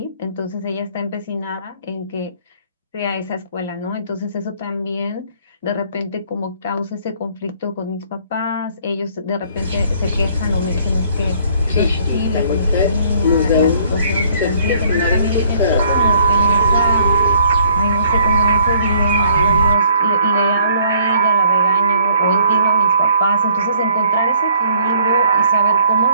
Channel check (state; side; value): inverted; both; correlation -0.61